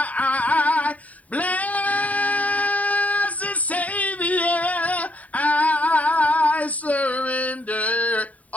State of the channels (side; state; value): right; late; 0.070 ms